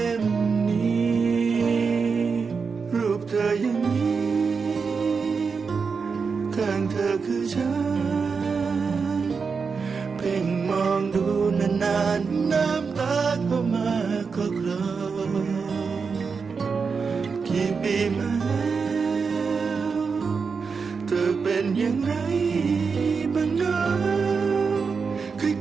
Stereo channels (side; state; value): left; quieter; 5.3 dB